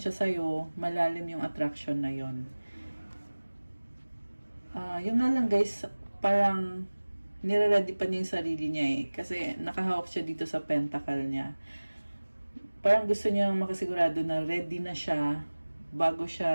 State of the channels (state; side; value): inverted; both; correlation -1.00